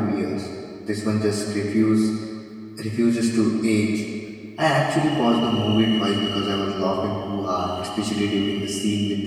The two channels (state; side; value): identical; both; correlation 1.00